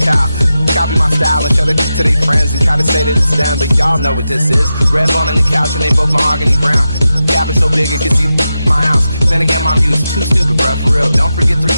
Kyle. Copy my style and show it to their friends and try to say that it's them, but y'all know what this is. Red bone on the couch and they both mahogany brown. Cabin so big it can see my house. Then again, my view is too stupid, bruh, for real. Don't forget to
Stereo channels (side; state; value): both; inverted; correlation -0.90